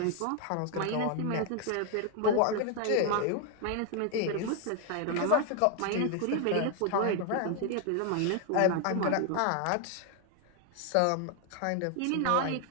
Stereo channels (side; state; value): both; different; correlation 0.00